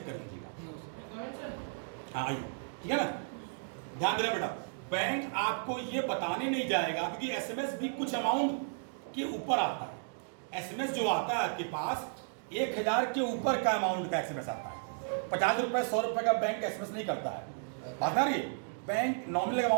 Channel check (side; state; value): left; silent; digital silence